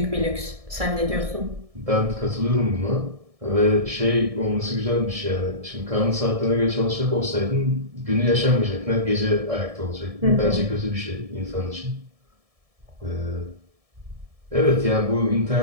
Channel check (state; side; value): late; left; 1.7 ms